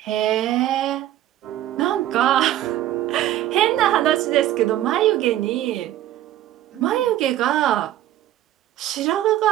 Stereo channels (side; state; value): left; quieter; 13.2 dB